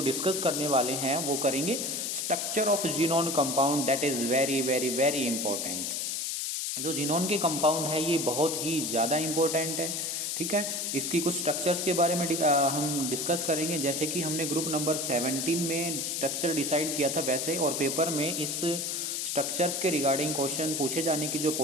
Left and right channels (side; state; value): left; noise; hiss, 1 dB below the sound